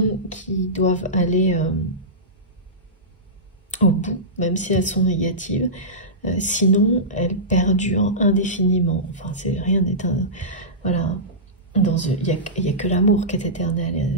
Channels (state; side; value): normal; both; correlation -0.17